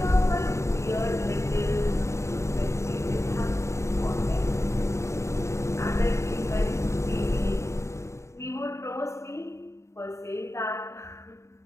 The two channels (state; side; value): late; right; 0.14 ms